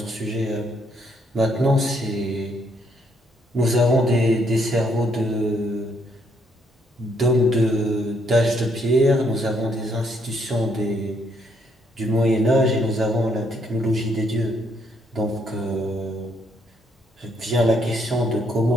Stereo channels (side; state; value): both; normal; correlation 0.71